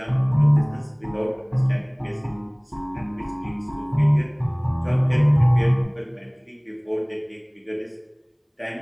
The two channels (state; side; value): identical; both; correlation 1.00